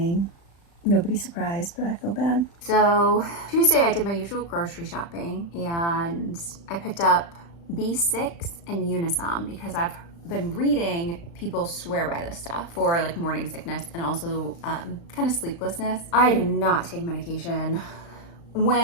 Nobody's surprised, but I feel bad. So Tuesday I did my usual grocery shopping and I picked up B6 and Unisom because I've been reading people swear by this stuff for like morning sickness and also kind of sleeplessness. I do not take medication.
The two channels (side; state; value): right; late; 35 ms